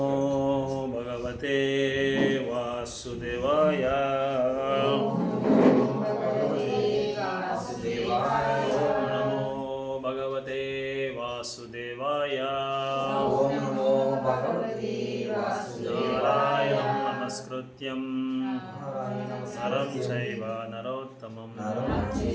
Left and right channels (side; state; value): both; identical; correlation 1.00